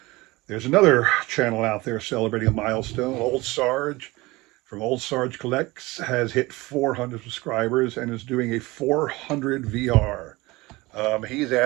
There's another channel out there celebrating a milestone. Old Sarge from Ol'SargeCollects has hit 400 subscribers and is doing a 400 VR. He's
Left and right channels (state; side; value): quieter; left; 21.6 dB